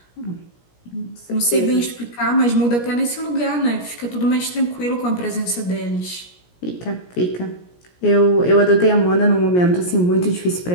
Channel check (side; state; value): right; late; 17 ms